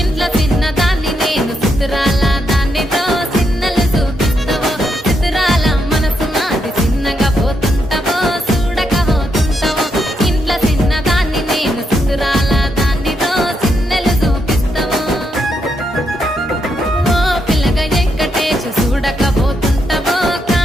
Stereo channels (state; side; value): normal; both; correlation 0.80